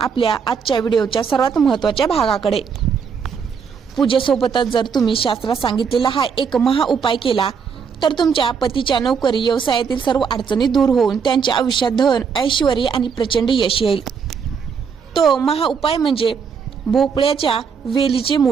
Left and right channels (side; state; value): left; quieter; 6.3 dB